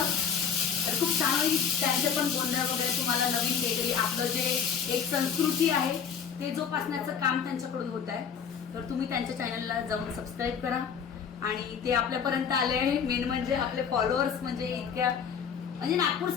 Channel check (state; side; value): quieter; right; 7.1 dB